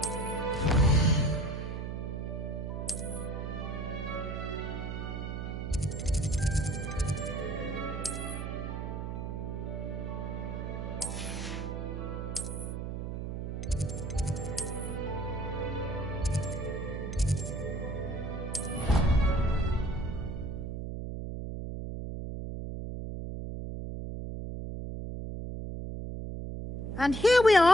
And here we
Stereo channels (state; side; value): noise; right; hum, 4 dB below the sound